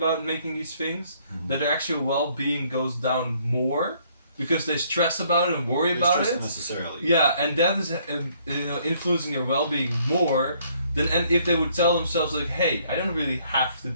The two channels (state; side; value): inverted; both; correlation -0.65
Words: making these things, that their actual well-being goes down more because they stress about it and worry about it. Necessarily. Yeah, and that is influencing their well-being more than if they would tell themselves like, hey, I don't really have to